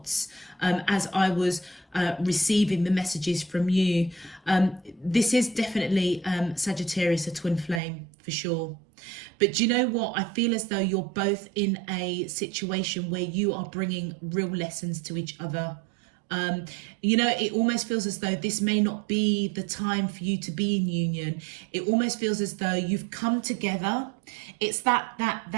as I was receiving the messages from you. This is definitely Sagittarius, a twin flame for sure. But do you know what? I feel as though you're both in a situation where you are bringing real lessons to each other. You know, it almost feels as though this may not be the time for you to be in union. It almost feels as though you've come together. It's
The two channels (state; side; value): drops out; left; at 7.8 s